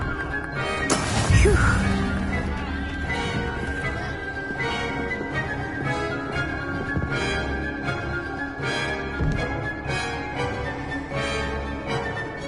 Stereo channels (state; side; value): identical; both; correlation 1.00